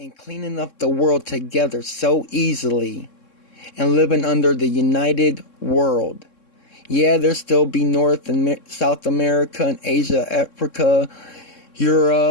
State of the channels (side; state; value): right; late; 3.7 ms